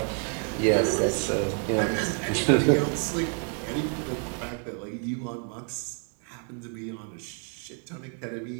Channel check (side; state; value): left; quieter; 38.3 dB